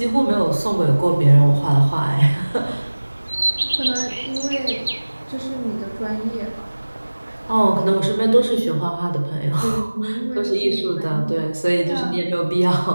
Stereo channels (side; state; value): both; inverted; correlation -1.00